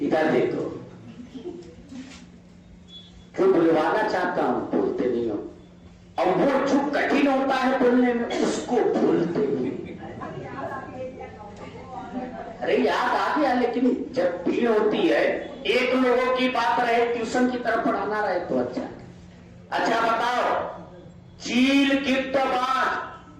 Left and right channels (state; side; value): identical; both; correlation 1.00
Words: इधर देखो, क्यों बुलवाना चाहता हूं, बोलते नहीं हो। और वो जो कठिन होता है बोलने में, उसको भूलते नहीं। अरे याद आ गया, लेकिन जब भीड़ होती है, एक लोगों की बात रहे, ट्यूशन की तरफ पढ़ाना रहे तो अच्छा बताओ, चील गिद्ध बाज,